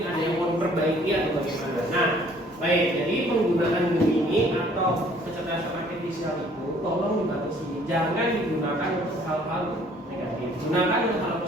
ada yang mau diperbaiki atau bagaimana. Nah, baik. Jadi penggunaan Gemini atau kecerdasan artifisial itu tolong dibatasi, jangan digunakan untuk hal-hal negatif. Gunakan untuk hal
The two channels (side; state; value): both; normal; correlation 0.58